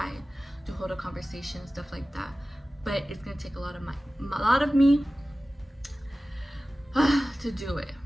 to hold a conversation, stuff like that. But it's gonna take a lot of me to do it.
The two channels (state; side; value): normal; both; correlation 0.96